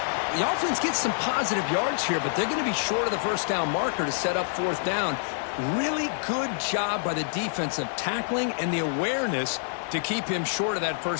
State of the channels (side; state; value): right; silent; digital silence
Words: The offense gets some positive yards here, but they're going to be short of the first down marker to set up fourth down. Really good job by the defensive tackling and the awareness to keep him short of that